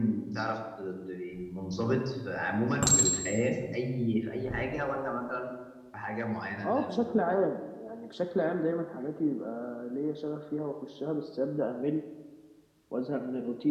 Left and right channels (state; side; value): identical; both; correlation 1.00